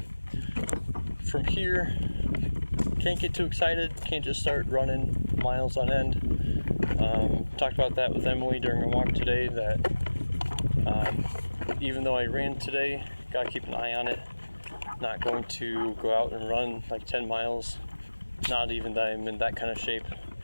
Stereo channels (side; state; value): both; inverted; correlation -1.00